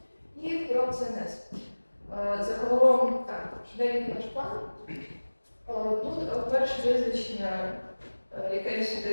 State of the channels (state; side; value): inverted; both; correlation -1.00